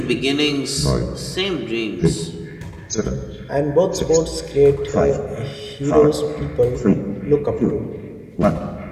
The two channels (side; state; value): both; identical; correlation 1.00